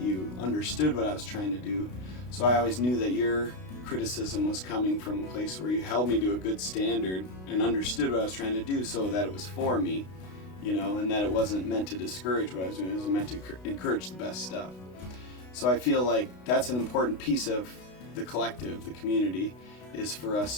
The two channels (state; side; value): late; right; 32 ms